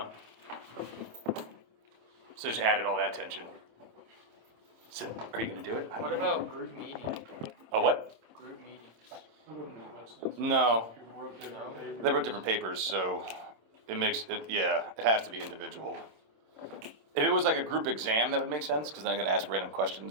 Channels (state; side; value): late; left; 27 ms